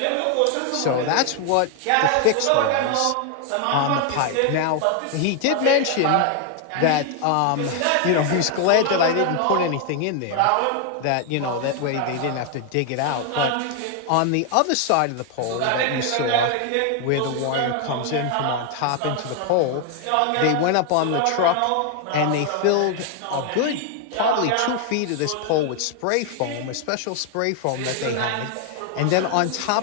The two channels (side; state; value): both; different; correlation 0.00